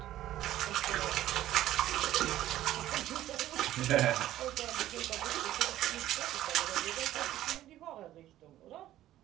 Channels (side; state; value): left; quieter; 13.6 dB